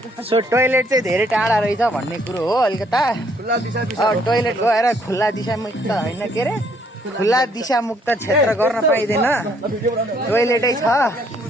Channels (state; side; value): normal; both; correlation 0.66